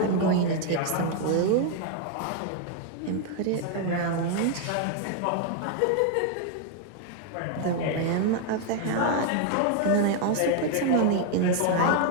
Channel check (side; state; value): both; different; correlation 0.00